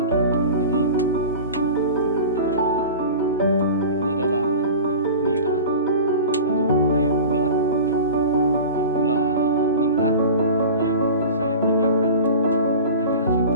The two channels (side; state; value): both; inverted; correlation -0.35